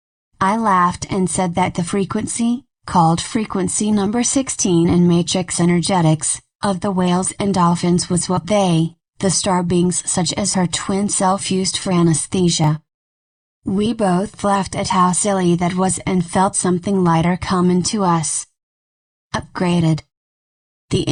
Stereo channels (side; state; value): both; identical; correlation 1.00